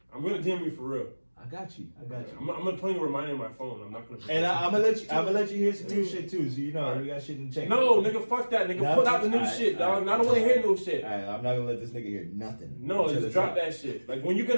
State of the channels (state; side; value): inverted; both; correlation -1.00